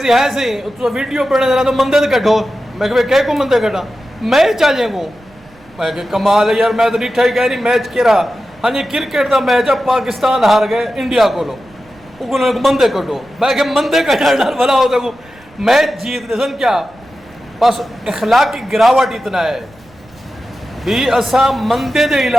है सी तो वीडियो पढ़ने जरा तो मंदे कटो मैं कह को मंदे कटा मैं चाहे को मैं कि कमाल है यार मैं तो डिठा ही कह रही मैच केरा हाँ जी क्रिकेट का मैच है पाकिस्तान हार गए इंडिया को मंदे कटो मैं कि मंदे कटना भला हो सको मैच जीत दे सन क्या बस इखलाक की गिरावट इतना है भी असा मंदे के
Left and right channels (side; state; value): right; noise; rumble, 27 dB below the sound